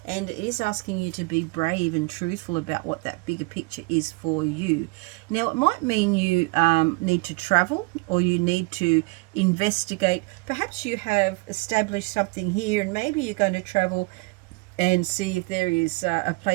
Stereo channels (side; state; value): left; quieter; 28.2 dB